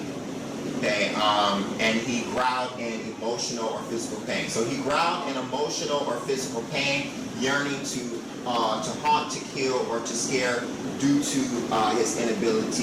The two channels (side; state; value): both; identical; correlation 1.00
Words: Okay, and he growled in emotional or physical pain. So he growled in emotional or physical pain, yearning to haunt, to kill, or to scare due to his